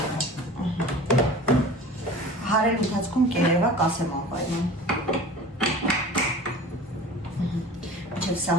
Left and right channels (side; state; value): both; normal; correlation 0.40